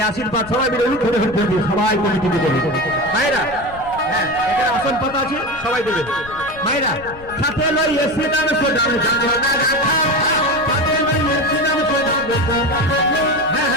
আশীর্বাদ সবাই মিলে ধরে সবাই কমিটিতে দেবে মায়েরা হ্যাঁ এখানে আসন পাতা আছে সবাই দেবে মায়েরা সাথে লইয়ে শ্রীরাম সোদাম সাথে লইয়ে শ্রীরাম সোদাম হ্যাঁ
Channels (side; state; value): left; noise; rumble, 18 dB below the sound